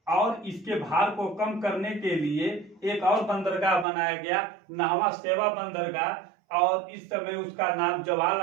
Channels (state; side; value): drops out; left; at 3.9 s